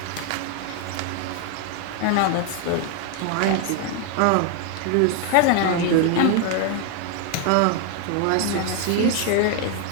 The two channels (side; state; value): both; different; correlation 0.00